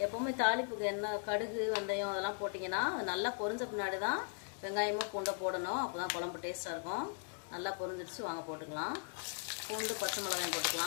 எப்போவுமே தாளிப்புக்கு எண்ணெய் கடுகு வெந்தயம் அதெல்லாம் போட்டிங்கன்னா அது நல்லா பொரிஞ்ச பின்னாடி தான் வெங்காயமும் பூண்டை போடணும். அப்போ தான் குழம்பு டேஸ்ட்டாக இருக்கும். நல்லா பொரிஞ்சிடுச்சு, வாங்க போட்டுக்கலாம். பூண்டு பச்சை மிளகாயும்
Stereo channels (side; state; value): right; quieter; 38.4 dB